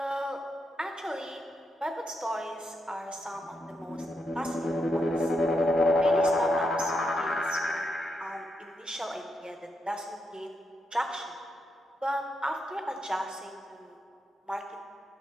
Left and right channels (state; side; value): normal; both; correlation 0.82